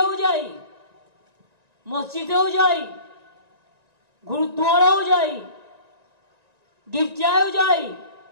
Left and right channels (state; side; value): late; left; 1.9 ms